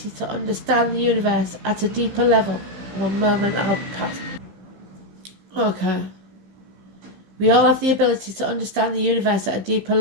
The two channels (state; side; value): late; left; 15 ms